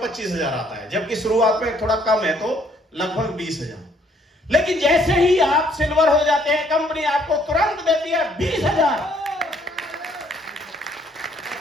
आता है, जबकि शुरुआत में थोड़ा कम है तो लगभग 20,000। लेकिन जैसे ही आप सिल्वर हो जाते हैं, कंपनी आपको तुरंत देती है 20,000।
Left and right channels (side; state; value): both; normal; correlation 0.65